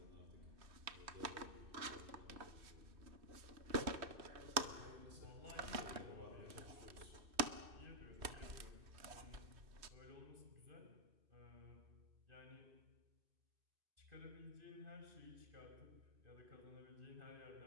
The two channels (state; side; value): late; left; 2.6 ms